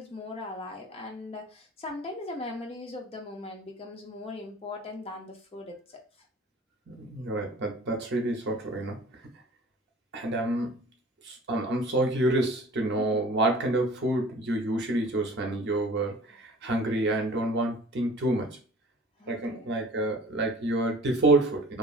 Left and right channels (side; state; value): both; normal; correlation 0.46